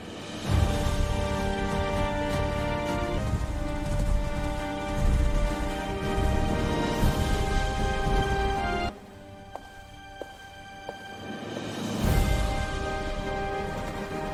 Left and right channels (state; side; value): identical; both; correlation 1.00